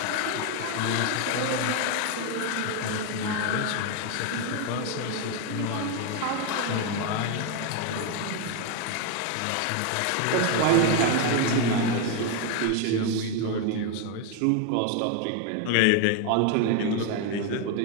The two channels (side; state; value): both; different; correlation 0.01